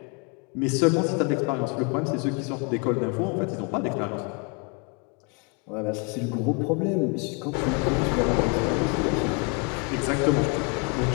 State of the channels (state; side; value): quieter; right; 32.6 dB